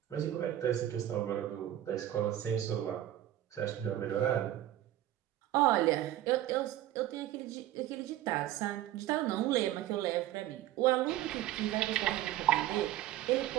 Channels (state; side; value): quieter; left; 13.2 dB